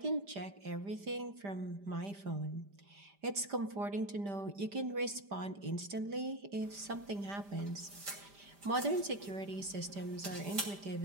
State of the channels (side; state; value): left; late; 5.0 ms